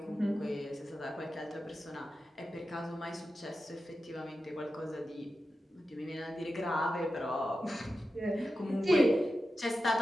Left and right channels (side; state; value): both; normal; correlation 0.92